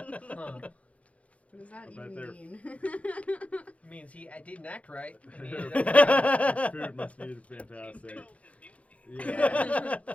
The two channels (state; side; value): late; right; 0.065 ms